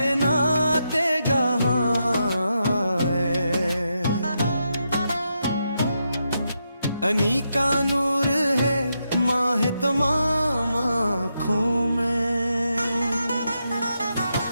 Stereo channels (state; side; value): inverted; both; correlation -0.84